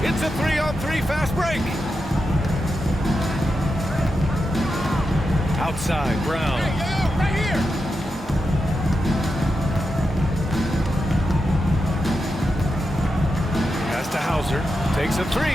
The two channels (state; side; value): normal; both; correlation 0.88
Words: It's a 3-on-3 fast break. Outside, Brown. Right here. Pass to Hauser. Takes a